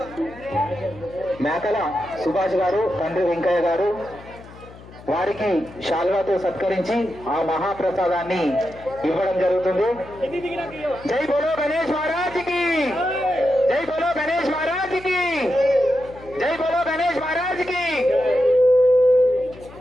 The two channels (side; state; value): left; noise; hum, 19 dB below the sound